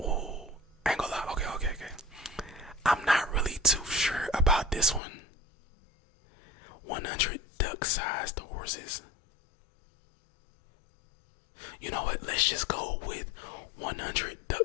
I ain't gonna lie. Okay. I'm not really too sure about this one. 100 duck-sized horses. You know what? Let's just go with 100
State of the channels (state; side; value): drops out; right; at 5.0 s